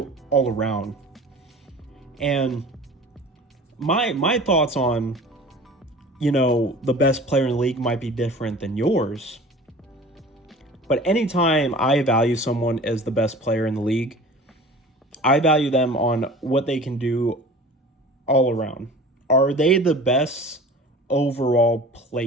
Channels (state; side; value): normal; both; correlation 0.41